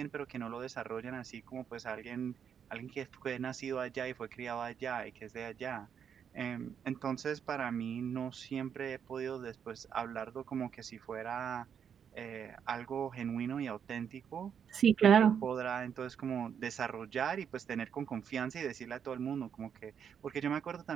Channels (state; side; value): quieter; left; 7.8 dB